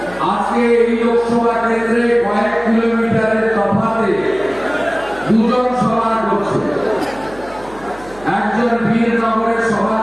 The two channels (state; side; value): noise; right; hum, 21 dB below the sound